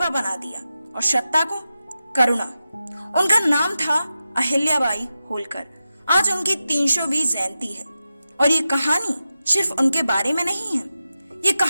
बना दिया और सत्ता को करुणा। उनका नाम था अहिल्याबाई होलकर। आज उनकी 300वीं जयंती है और ये कहानी सिर्फ उनके बारे में नहीं है। ये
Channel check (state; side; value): inverted; both; correlation -0.92